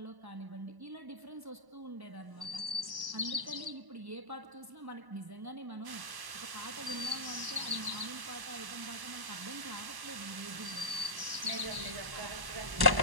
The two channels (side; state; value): left; late; 1.1 ms